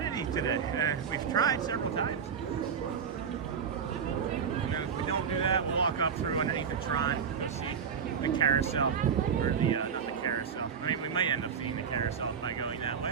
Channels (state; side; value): quieter; left; 6.9 dB